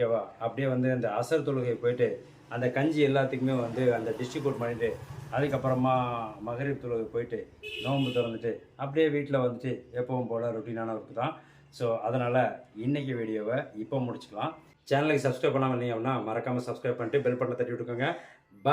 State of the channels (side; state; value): both; identical; correlation 1.00